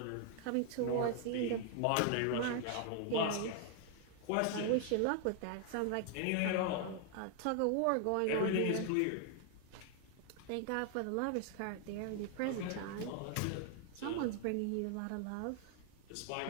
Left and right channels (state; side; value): different; both; correlation 0.00